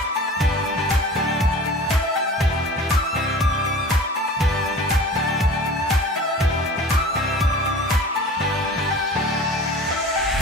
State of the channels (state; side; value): normal; both; correlation 0.40